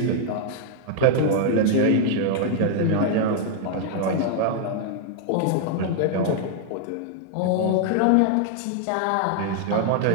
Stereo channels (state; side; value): different; both; correlation -0.01